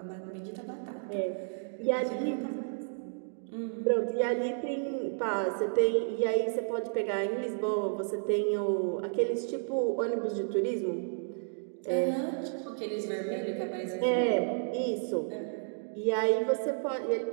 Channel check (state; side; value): silent; left; digital silence